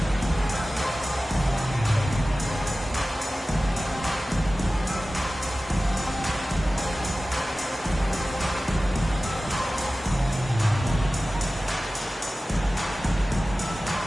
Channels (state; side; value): normal; both; correlation 0.96